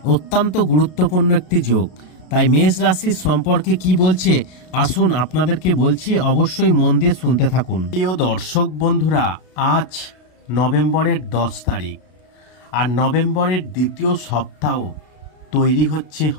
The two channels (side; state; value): right; late; 32 ms